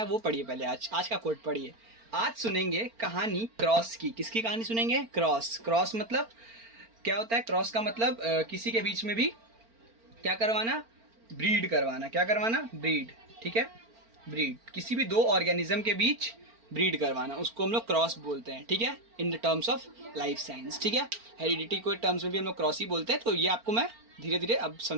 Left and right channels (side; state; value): left; late; 4.4 ms